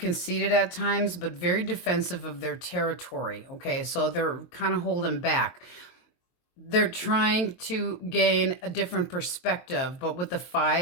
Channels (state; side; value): late; right; 23 ms